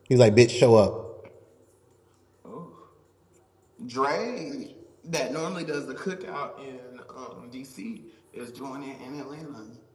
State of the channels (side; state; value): both; identical; correlation 1.00